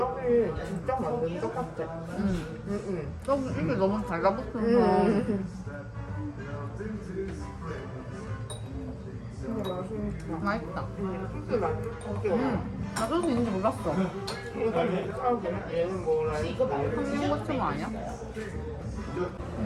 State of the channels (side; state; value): both; identical; correlation 1.00